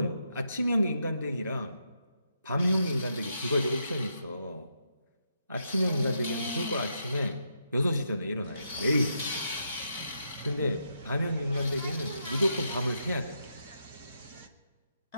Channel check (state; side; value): inverted; both; correlation -0.82